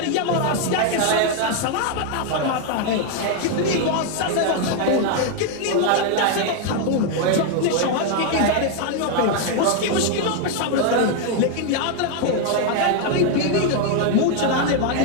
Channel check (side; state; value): both; different; correlation 0.01